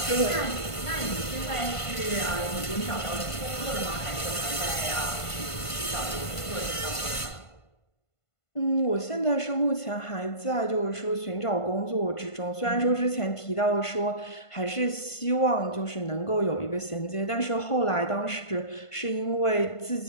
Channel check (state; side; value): late; right; 1.5 ms